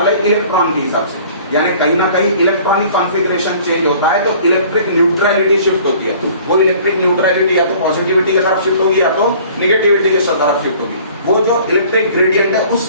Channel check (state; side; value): inverted; both; correlation -0.51